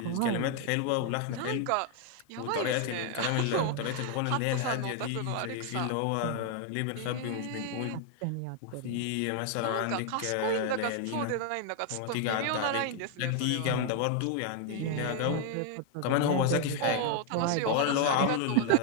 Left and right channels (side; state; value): both; different; correlation 0.00